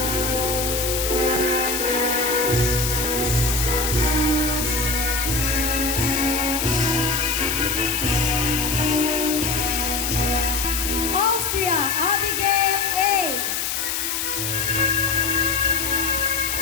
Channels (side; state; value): left; noise; hiss, 1 dB below the sound